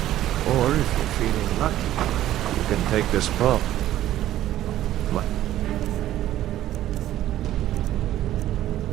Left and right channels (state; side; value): quieter; left; 13.3 dB